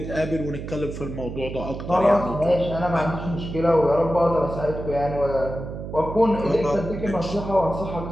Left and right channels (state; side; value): noise; right; hum, 8 dB below the sound